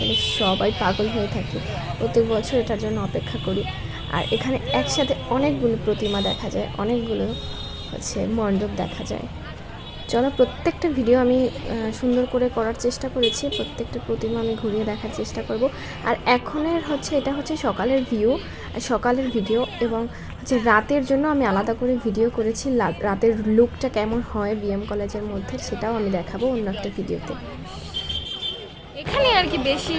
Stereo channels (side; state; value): both; identical; correlation 1.00